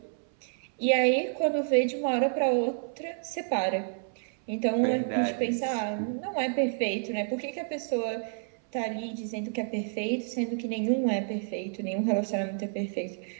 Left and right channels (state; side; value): silent; left; 58 dB below the other